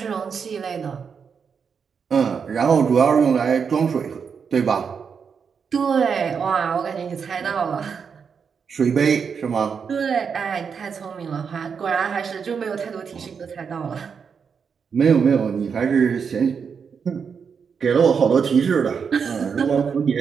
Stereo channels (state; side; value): quieter; left; 6.3 dB